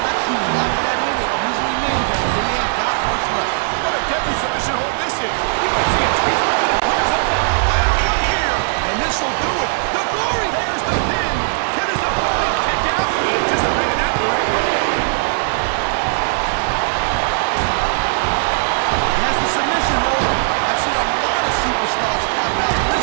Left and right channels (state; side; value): silent; left; digital silence